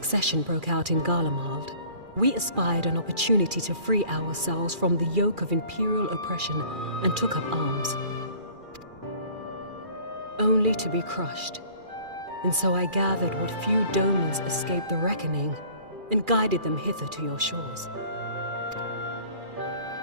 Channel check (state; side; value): late; left; 2.4 ms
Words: broke out in Garlemald, we espied an opportunity to free ourselves from the yoke of imperial oppression and took up arms. Only to be crushed. And so I gathered what few Domans escaped the reckoning and guided them hither to your shores.